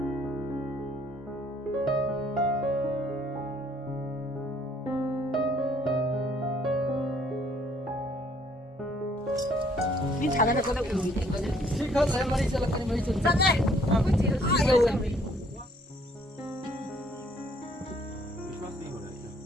Đi thằng này có được ủi thì có được. Chị không lấy mà đi chơi là cái mấy chuyện. Chân này. Ai đâu rồi.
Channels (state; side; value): normal; both; correlation 0.63